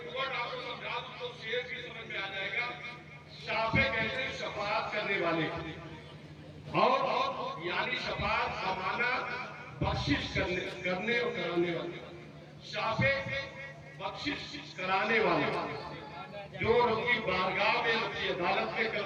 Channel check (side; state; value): both; identical; correlation 1.00